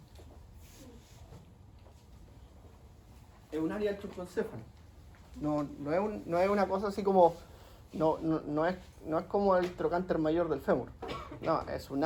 Es un área del troncocéfalo. No es una cosa así como, no es como el trocánter mayor del fémur. No, es un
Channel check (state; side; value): identical; both; correlation 1.00